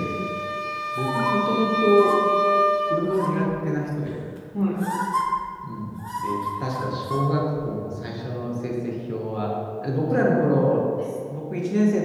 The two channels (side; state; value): both; identical; correlation 1.00